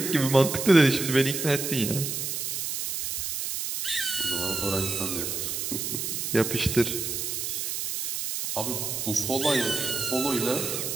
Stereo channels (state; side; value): noise; right; hiss, 3 dB below the sound